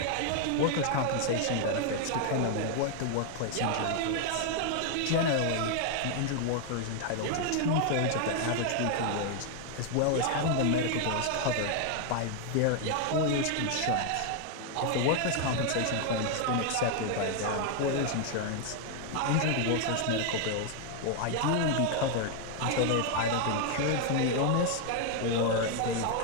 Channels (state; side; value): different; both; correlation 0.00